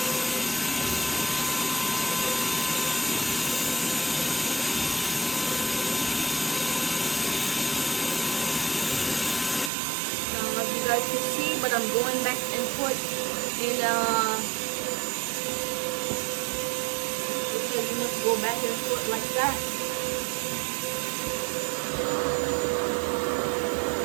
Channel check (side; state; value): left; drops out; at 9.7 s